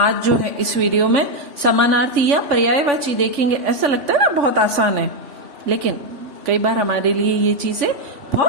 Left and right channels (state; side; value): late; left; 3.5 ms